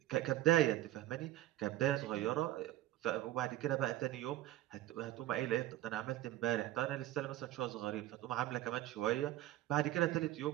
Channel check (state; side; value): quieter; left; 15.3 dB